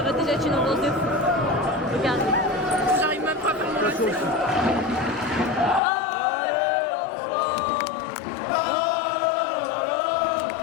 va déjà être une ambiance de fou. Regardez. J'arrive même pas à faire mon lacet.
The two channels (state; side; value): drops out; right; at 5.8 s